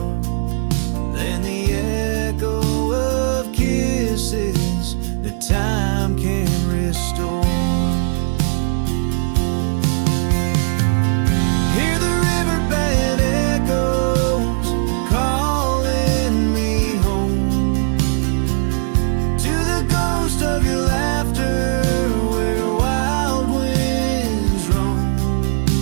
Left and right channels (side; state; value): left; silent; 63 dB below the other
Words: than the echo of kisses that time can restore. Hear the riverbed echoes calling me home to the ghost of your laughter where wild winds roam.